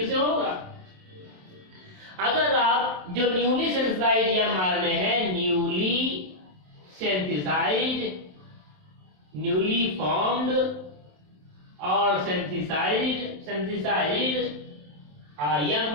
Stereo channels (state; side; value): late; left; 27 ms